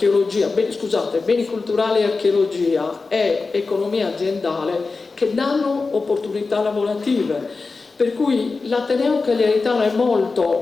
beni culturali e archeologia, e economia aziendale, che danno opportunità lavorative. Per cui l'Ateneo Cagliaritano è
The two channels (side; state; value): right; quieter; 4.1 dB